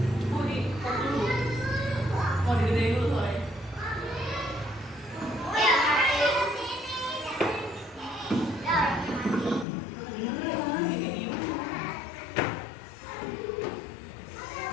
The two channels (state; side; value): drops out; right; at 9.7 s